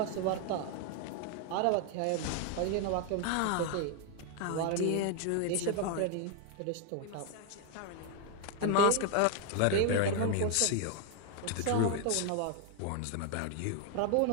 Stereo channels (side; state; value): both; different; correlation 0.00